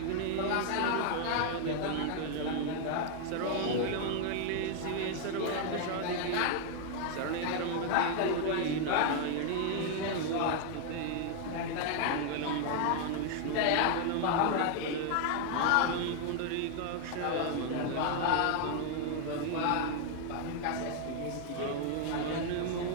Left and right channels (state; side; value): different; both; correlation 0.00